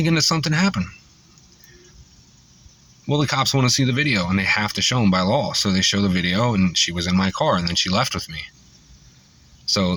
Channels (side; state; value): both; identical; correlation 1.00